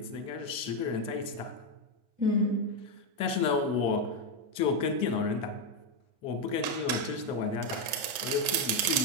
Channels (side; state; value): left; late; 4.6 ms